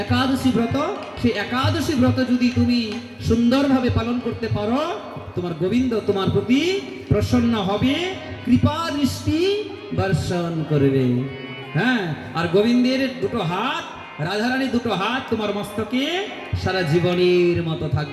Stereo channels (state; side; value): identical; both; correlation 1.00